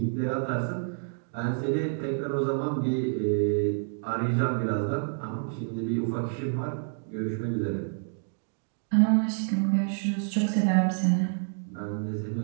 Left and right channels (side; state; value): left; silent; 59 dB below the other